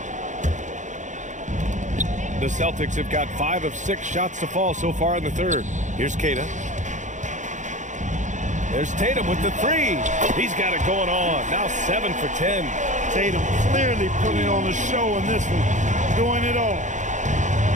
The Celtics have got 5 of 6 shots to fall so far in the third. Here's Keita. There's Tatum with the 3. He's got it going on. Now 7 for 10. Tatum clearly putting on the show in this one. Doing it all.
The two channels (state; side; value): late; left; 0.35 ms